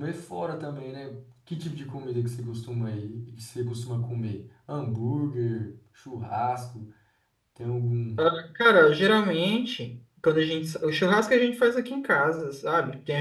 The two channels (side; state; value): both; identical; correlation 1.00